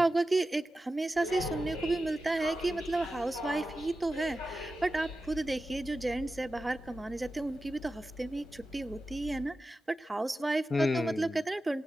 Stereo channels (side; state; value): both; normal; correlation 0.93